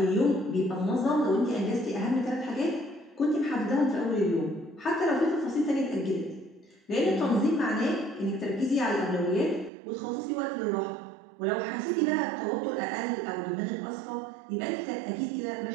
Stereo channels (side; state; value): left; drops out; at 9.7 s